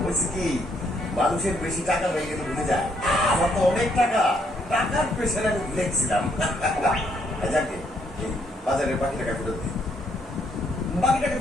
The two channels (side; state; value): both; normal; correlation 0.71